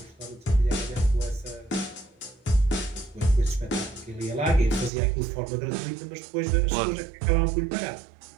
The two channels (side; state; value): left; drops out; at 4.9 s